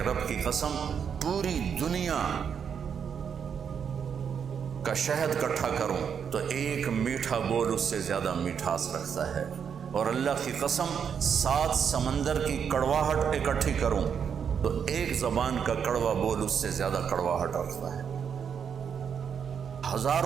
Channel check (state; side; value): quieter; left; 7.3 dB